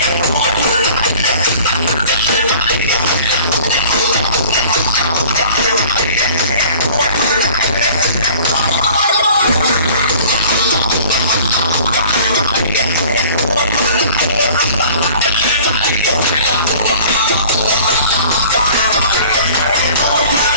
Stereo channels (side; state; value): both; inverted; correlation -0.48